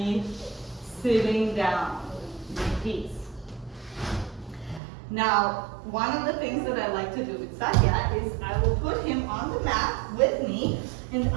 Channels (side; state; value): left; drops out; at 4.8 s